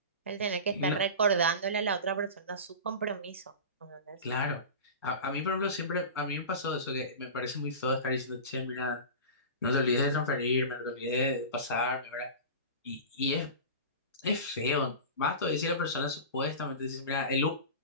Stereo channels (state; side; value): inverted; both; correlation -0.30